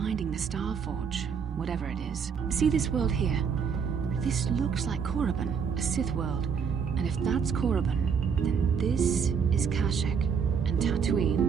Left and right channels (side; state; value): left; quieter; 6.5 dB